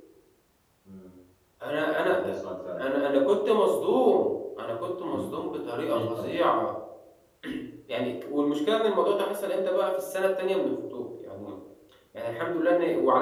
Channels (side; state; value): both; identical; correlation 1.00